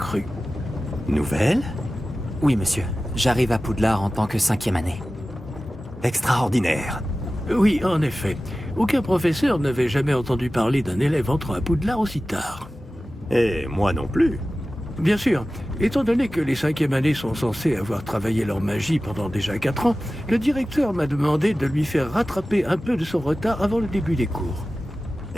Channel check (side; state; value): both; normal; correlation 0.95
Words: Nouvelle? Oui, monsieur. J'arrive à Poudlard en tant que 5e année. Extraordinaire. Oui, en effet. Aucun professeur n'avait jamais entendu parler d'un élève entrant à Poudlard aussi tard. Et moi non plus. Bien sûr, étant donné que les 5e années sont censées avoir travaillé leur magie pendant déjà 4 ans, le directeur m'a demandé de lui faire rattraper un peu de son retard avant le début des cours.